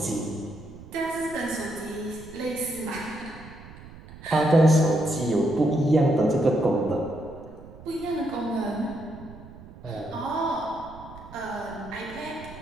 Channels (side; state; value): right; noise; rumble, 17 dB below the sound